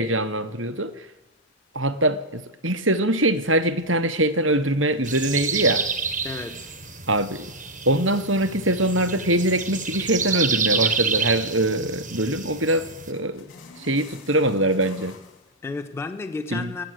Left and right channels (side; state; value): both; normal; correlation -0.02